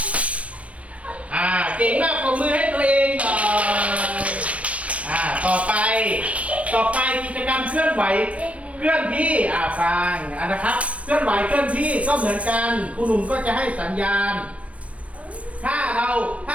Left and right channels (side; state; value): left; late; 0.064 ms